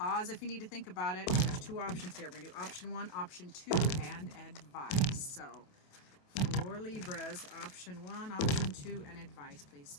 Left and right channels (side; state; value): right; late; 28 ms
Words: if you need to think about it. There's two options here. We're going to do option 1, option 2, and advice. So for Libras, option 1, option 2, and advice, please,